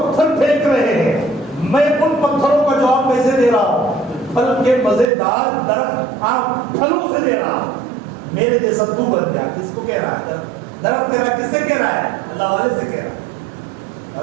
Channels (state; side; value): drops out; left; at 5.1 s